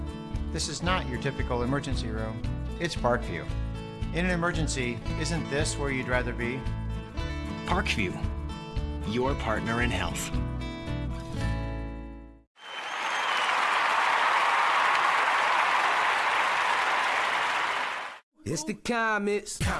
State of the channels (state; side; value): identical; both; correlation 1.00